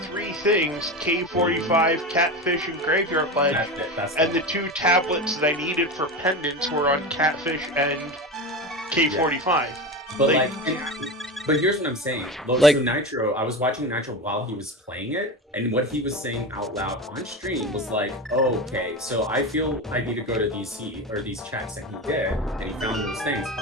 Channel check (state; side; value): normal; both; correlation 0.23